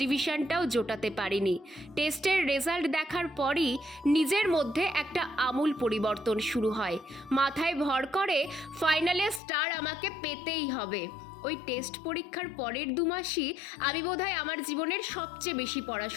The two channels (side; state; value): right; drops out; at 9.4 s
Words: ডিভিশনটাও জোটাতে পারিনি। টেস্টের রেজাল্ট দেখার পরই নিজের মধ্যে একটা আমূল পরিবর্তন শুরু হয়। মাথায় ভর করে ফাইনালে স্টার আমাকে পেতেই হবে। ওই টেস্ট পরীক্ষার পরের 2 মাসই আমি বোধহয় আমার জীবনের সবচেয়ে বেশি